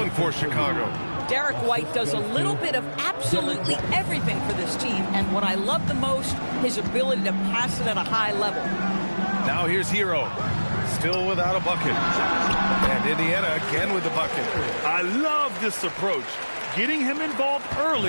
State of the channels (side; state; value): both; inverted; correlation -1.00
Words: for Chicago. Derek White does a little bit of absolutely everything for this team. And what I love the most, his ability to pass it at a high level. Now here's Hero. Still without a bucket. And Indiana again with the bucket. I love this approach. Getting him involved